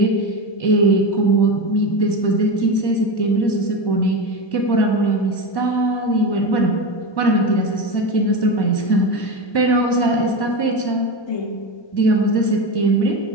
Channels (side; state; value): right; late; 1.1 ms